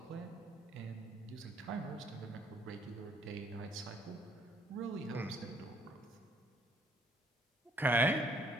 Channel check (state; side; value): normal; both; correlation 0.65